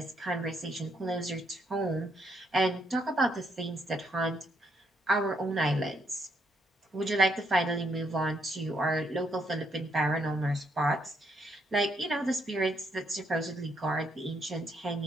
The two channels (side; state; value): both; normal; correlation 0.74